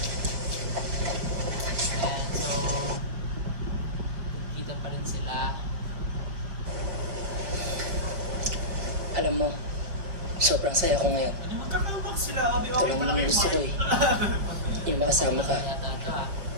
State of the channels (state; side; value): late; left; 5.0 ms